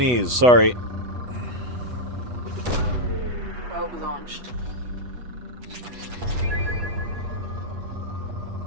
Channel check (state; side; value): late; left; 8.1 ms